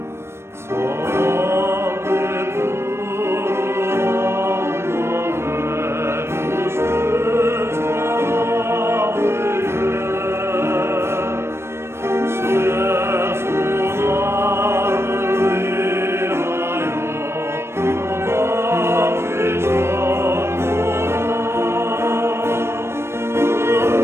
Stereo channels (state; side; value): late; left; 0.12 ms